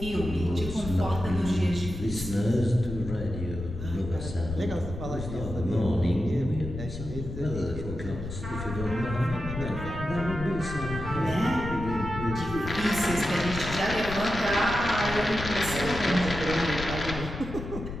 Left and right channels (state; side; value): noise; left; rumble, 8 dB below the sound